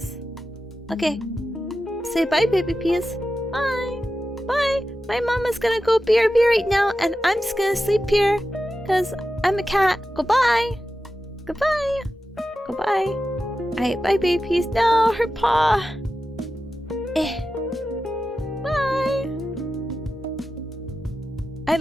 Okay. Say bye, baby peas. Bye. Bye. My mama's gonna go BRB right now, and I'm just gonna sleep here. Because I'm a cat. Goodbye. Goodbye. Goodbye. Alright, bye, baby peas. No, her paw. Bye. I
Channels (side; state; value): both; normal; correlation 0.92